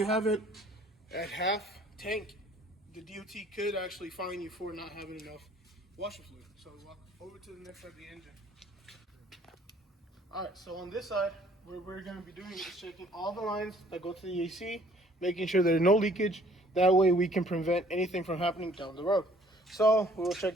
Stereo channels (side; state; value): both; normal; correlation 0.57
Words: have it at half tank, the DOT could actually fine you for not having enough washer fluid. So walk over to the next side of the engine. Alright, so on this side, what we're going to be doing is checking all the lines that go to the AC, making sure there's no leakage. That way we can prevent anything from happening down the road. So we will